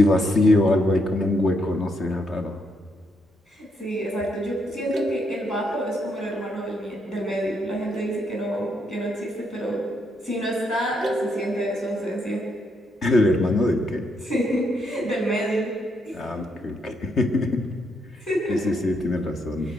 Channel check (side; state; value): both; normal; correlation 0.76